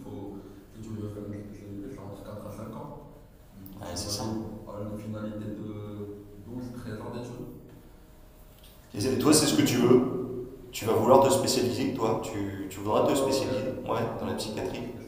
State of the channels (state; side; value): identical; both; correlation 1.00